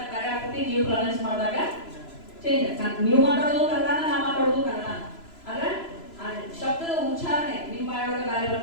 ಬೇರೆ ಆಗ್ತದೆ, ನೀವು ಪ್ರೊನೌನ್ಸ್ ಮಾಡಿದಾಗ ಚೇಂಜ್. ನೀವು ಮಾತಾಡೋದು ಕನ್ನಡ, ನಾ ಮಾತಾಡೋದು ಕನ್ನಡ. ಆದ್ರೆ ಶಬ್ದದ ಉಚ್ಚಾರಣೆ ನಿಮ್ಮ ಬಾಯೊಳಗೆ ಬೇರೆ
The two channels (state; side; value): late; right; 3.0 ms